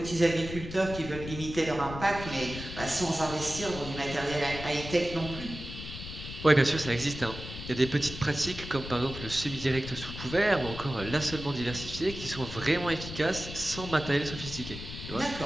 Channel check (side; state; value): left; noise; rumble, 10 dB below the sound